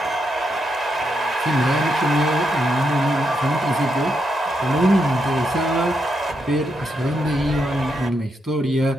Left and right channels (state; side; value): normal; both; correlation 0.81